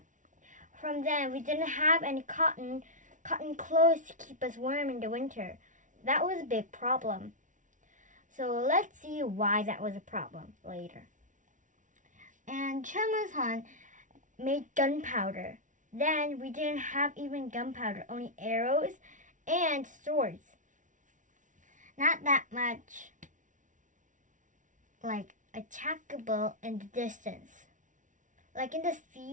From then, we didn't have any cotton clothes to keep us warm in the winter. That was a big problem. So let's see why that was a problem later. And Choimusun made gunpowder. Then we didn't have even gunpowder, only arrows and swords. Not that much like attackable in the distance. Like in the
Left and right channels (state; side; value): late; left; 0.37 ms